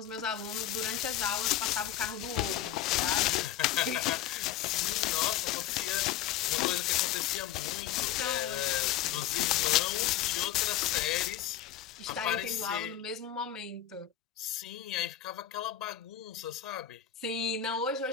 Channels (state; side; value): quieter; right; 11.2 dB